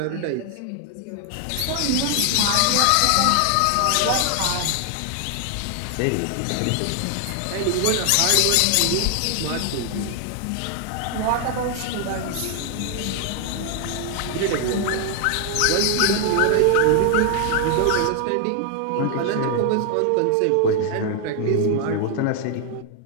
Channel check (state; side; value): different; both; correlation 0.00